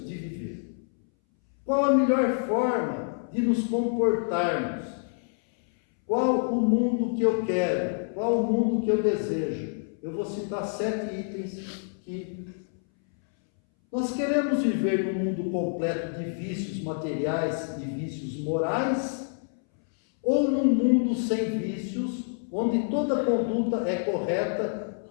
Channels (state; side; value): silent; right; 60 dB below the other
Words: de viver. Qual a melhor forma de nos comportarmos? Qual o mundo que eu quero? Qual o mundo que eu desejo? Eu vou citar 7 itens que nós queremos viver num mundo completo de vícios materiais e vícios morais, ou num mundo sem vícios, onde toda conduta é correta,